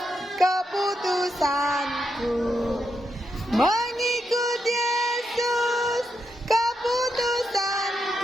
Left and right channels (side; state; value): both; normal; correlation 0.83